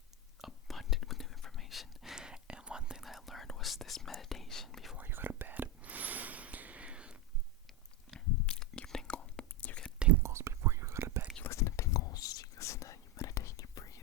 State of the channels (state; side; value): normal; both; correlation 0.10